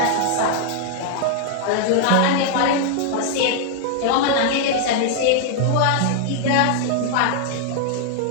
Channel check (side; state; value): both; different; correlation 0.00